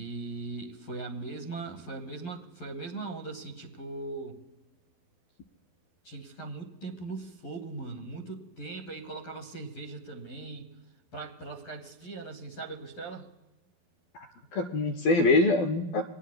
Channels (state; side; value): late; right; 11 ms